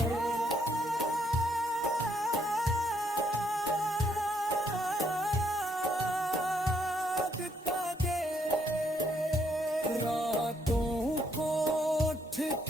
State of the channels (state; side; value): normal; both; correlation 0.72